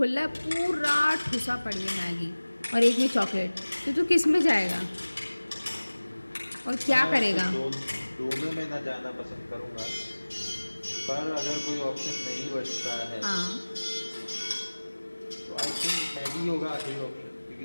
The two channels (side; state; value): both; inverted; correlation -1.00